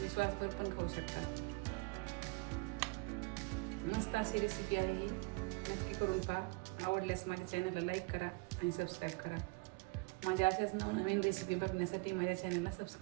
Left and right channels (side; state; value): left; quieter; 28.0 dB